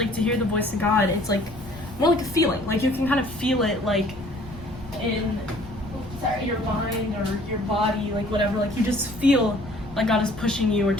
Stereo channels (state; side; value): noise; left; rumble, 15 dB below the sound